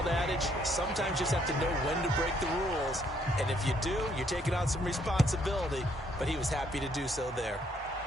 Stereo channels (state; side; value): normal; both; correlation 0.68